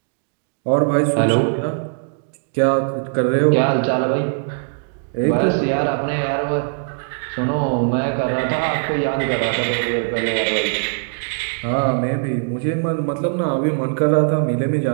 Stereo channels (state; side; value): silent; left; digital silence